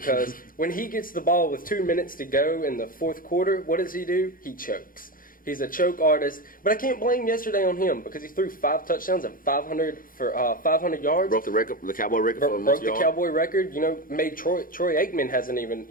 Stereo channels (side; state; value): right; late; 0.41 ms